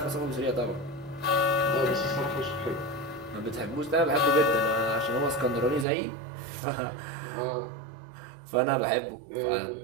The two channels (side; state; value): left; drops out; at 5.9 s